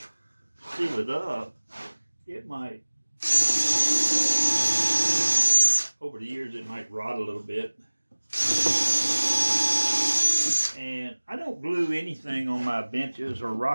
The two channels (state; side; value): inverted; both; correlation -1.00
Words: seal it up, it might, over the years, it might rot a little bit. And I don't glue anything on my benches or